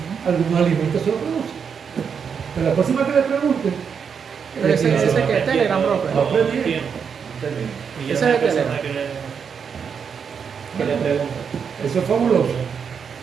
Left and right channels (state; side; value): quieter; left; 6.7 dB